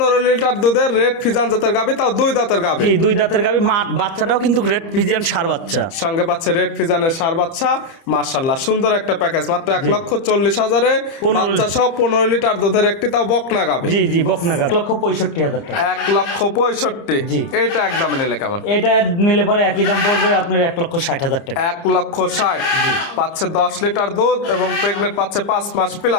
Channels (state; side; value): late; right; 30 ms